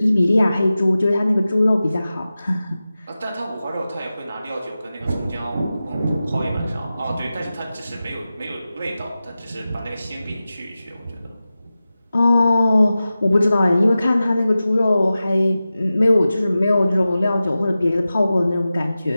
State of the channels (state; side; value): inverted; both; correlation -0.94